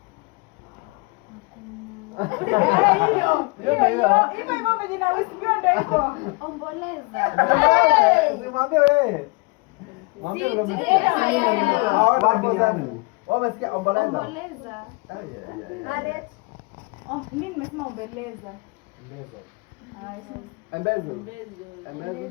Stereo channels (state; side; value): quieter; right; 28.6 dB